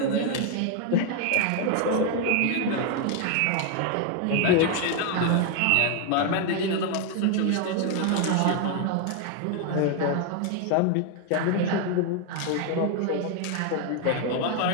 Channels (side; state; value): both; different; correlation 0.01